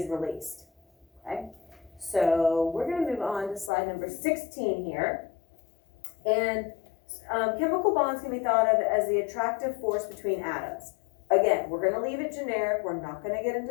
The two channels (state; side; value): drops out; right; at 3.7 s